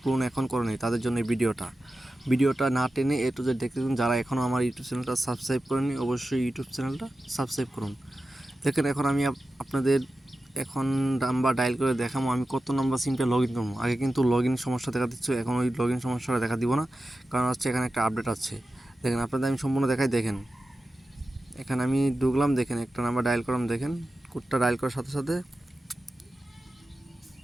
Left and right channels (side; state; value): both; normal; correlation 0.93